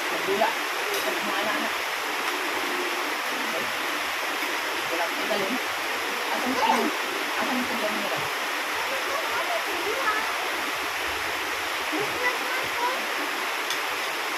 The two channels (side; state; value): both; identical; correlation 1.00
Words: magdula. Sa mga anak-anak. Okay? Wala ko galing. Asan ka yun? Asan ka dyan nila?